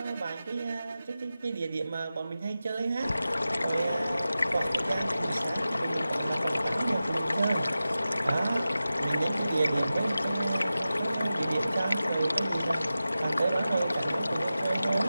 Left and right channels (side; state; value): both; inverted; correlation -0.94